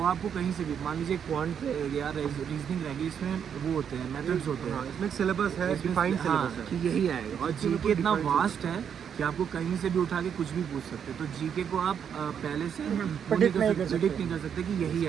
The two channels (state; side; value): quieter; left; 8.0 dB